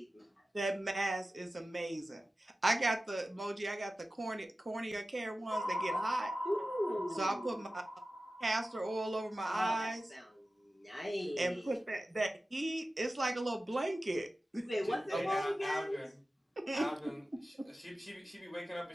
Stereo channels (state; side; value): normal; both; correlation 0.95